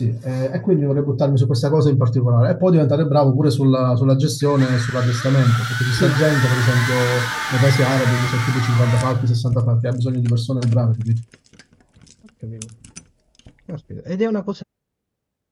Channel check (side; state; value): both; identical; correlation 1.00